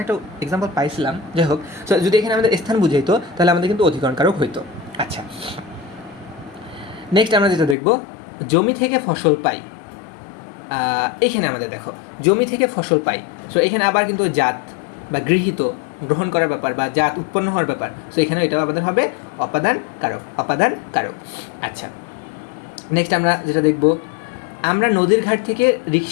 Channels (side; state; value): right; drops out; at 7.8 s